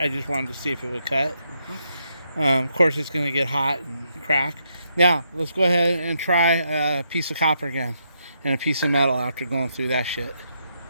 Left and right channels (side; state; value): both; inverted; correlation -0.78